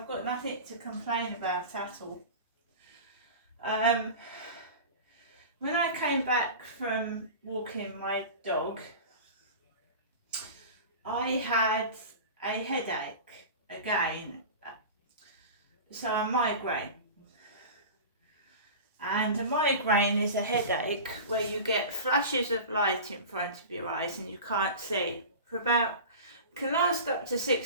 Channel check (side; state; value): both; inverted; correlation -0.33